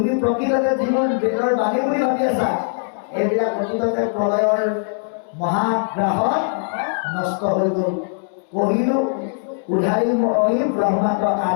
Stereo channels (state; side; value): silent; right; 65 dB below the other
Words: প্ৰকৃততে যিবোৰ বেদৰ বাণী বুলি ভাবি আছা, এইবিলাক প্ৰকৃততে প্ৰলয়ৰ মহাগ্ৰাহত নষ্ট হৈ গ'ল। কহিলো উধাৰি মই ব্ৰহ্মাণ্ড